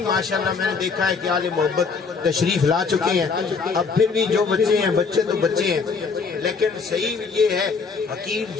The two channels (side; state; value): right; quieter; 5.0 dB